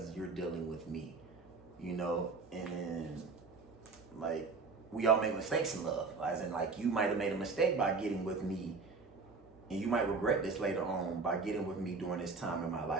you're dealing with me, you know. And like, we all make mistakes in love, as in like you might have made a mistake by getting with me, and you might regret this later on by getting with me during this time in my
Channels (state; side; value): quieter; left; 4.3 dB